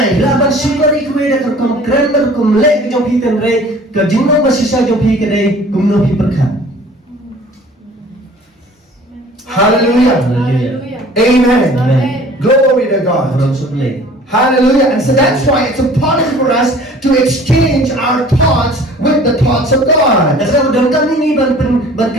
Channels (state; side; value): normal; both; correlation 0.49